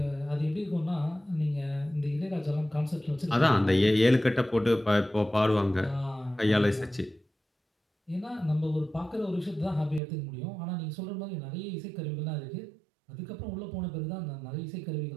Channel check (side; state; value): left; drops out; at 10.0 s